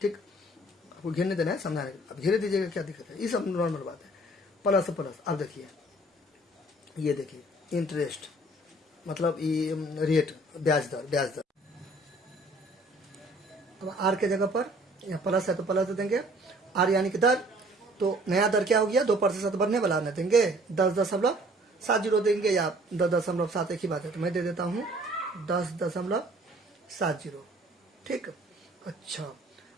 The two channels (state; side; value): normal; both; correlation 0.55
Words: ठीक, आपको घेरने देना है, समझाने, अब घेरे दीजिएगा, क्या दिक्कत है, ये सब नॉर्मल बात है। प्लस प्लस, अब देखिए ये देखिए इंटरेस्ट मतलब ये रेट, ब्याज दर। अब आर के जगह पर यहाँ प्लस है तो प्लस दे देंगे, आर यानी कि दर, तो नया दर क्या हो गया, 2% बढ़ने वाला न देंगे, 10.70 देंगे या 10.7, एक ही बात है, तो मैं दे देता हूँ 10.70, ठीक। अच्छा